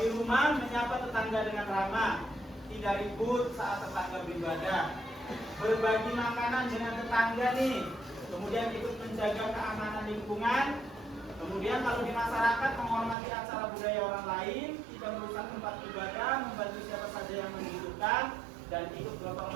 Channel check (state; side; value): drops out; left; at 13.2 s